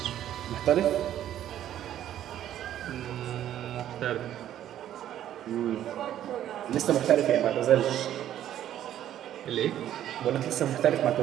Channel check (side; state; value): left; quieter; 11.5 dB